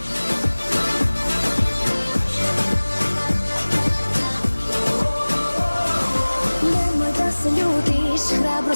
Nemoj da se ljutiš,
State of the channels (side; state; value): both; inverted; correlation -1.00